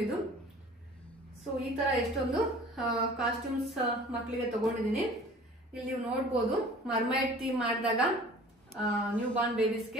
ಇದು. ಸೊ ಈ ತರ ಎಷ್ಟೊಂದು ಕಾಸ್ಟ್ಯೂಮ್ಸ್ ಮಕ್ಕಳಿಗೆ ತಗೊಂಡಿದ್ದೀನಿ. ಇಲ್ಲಿ ನೀವು ನೋಡ್ಬೋದು ಮರ್ಮೈಡ್ ಥೀಮ್ ಮಾಡಿದಾಗ ನ್ಯೂ ಬಾರ್ನ್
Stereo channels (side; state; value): both; normal; correlation 0.46